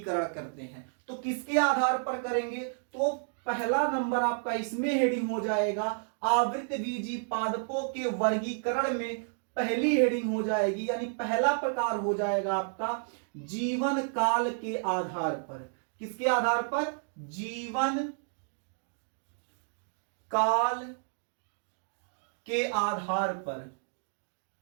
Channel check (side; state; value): left; silent; digital silence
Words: करते हैं। तो किसके आधार पर करेंगे? तो पहला नंबर आपका इसमें हेडिंग हो जाएगा, आवृतबीजी पादपों के वर्गीकरण में पहली हेडिंग हो जाएगी, यानी पहला प्रकार हो जाएगा आपका जीवन काल के आधार पर। किसके आधार पर? जीवन काल के आधार पर।